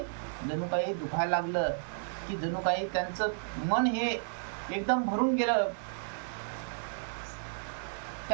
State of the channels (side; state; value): left; silent; 56 dB below the other